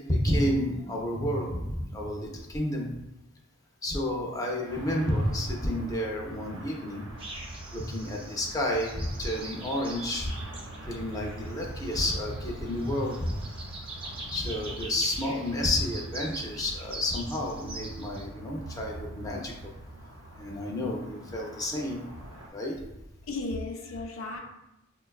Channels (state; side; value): normal; both; correlation 0.53